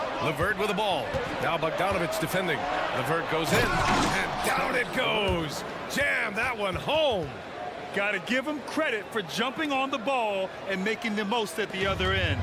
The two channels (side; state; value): both; identical; correlation 1.00